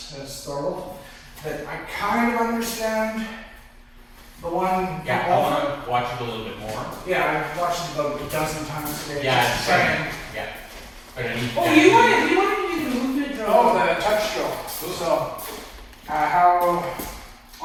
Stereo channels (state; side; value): identical; both; correlation 1.00